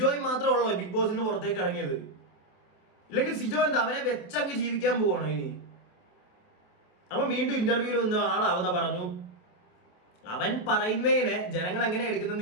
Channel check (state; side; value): late; right; 27 ms